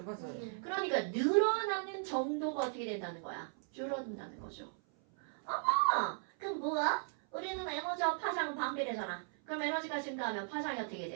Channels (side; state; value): left; silent; 53 dB below the other